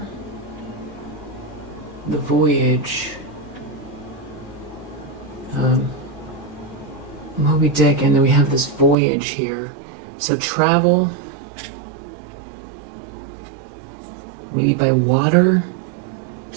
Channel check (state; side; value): drops out; left; at 9.0 s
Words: The Voyage. Moby Dick, and then we have this voyage here. So travel. Maybe by water.